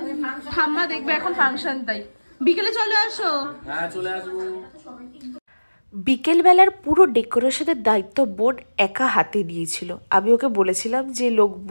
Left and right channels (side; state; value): both; inverted; correlation -1.00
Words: ঠাম্মা দেখবে এখন ফাংশন, তাই বিকেলে চলে আসো। হ্যাঁ চলে আসবো। বিকেলবেলার পুরো ডেকোরেশনের দায়িত্ব বোন একা হাতে নিয়েছিল। আমি ওকে বলেছিলাম যে লোক